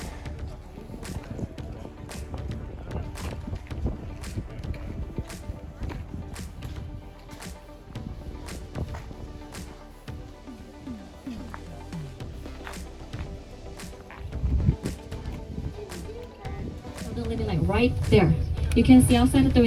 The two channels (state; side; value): identical; both; correlation 1.00